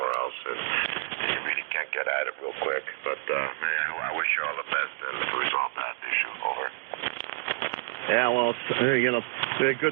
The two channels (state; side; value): quieter; left; 27.3 dB